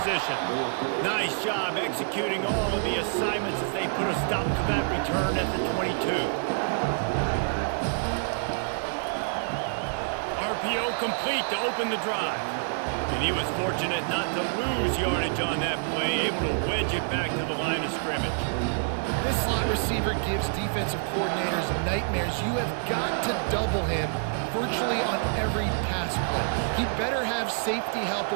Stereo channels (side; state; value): left; silent; digital silence